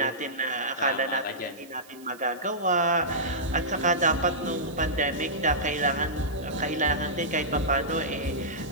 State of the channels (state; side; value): noise; right; hiss, 23 dB below the sound